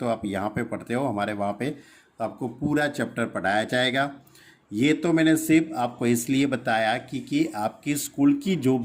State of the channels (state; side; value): identical; both; correlation 1.00